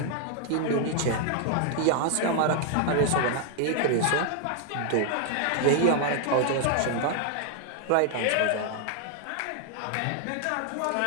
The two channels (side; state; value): both; different; correlation 0.00